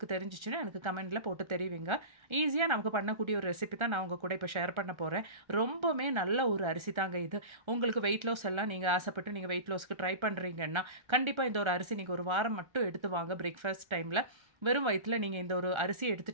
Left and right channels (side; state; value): left; late; 1.3 ms